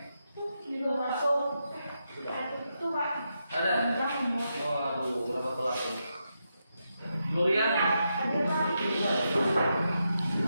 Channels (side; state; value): both; inverted; correlation -0.85